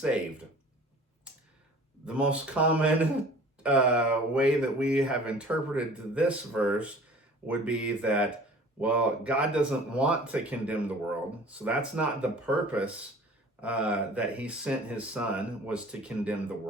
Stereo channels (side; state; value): both; normal; correlation 0.46